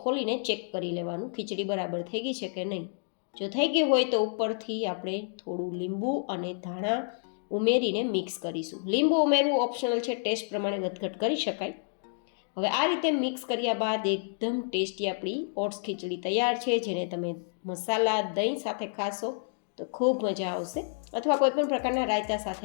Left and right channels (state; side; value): silent; right; digital silence